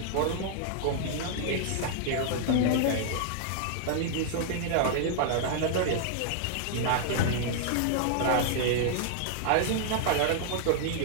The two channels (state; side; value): different; both; correlation -0.01